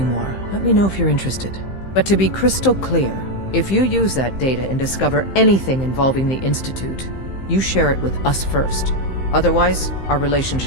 more. Let me know if you're interested. But to be crystal clear, if you use that data and discover anything involving the Institute, you share it with us first. Otherwise, our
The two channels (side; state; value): right; late; 15 ms